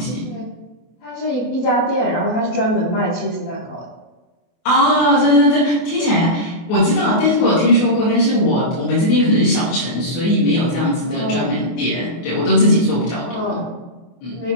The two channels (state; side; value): late; right; 24 ms